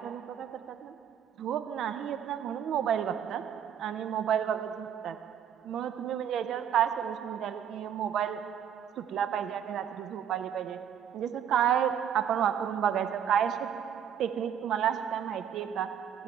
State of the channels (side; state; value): left; quieter; 8.8 dB